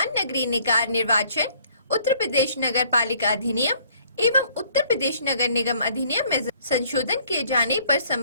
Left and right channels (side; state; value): both; inverted; correlation -0.60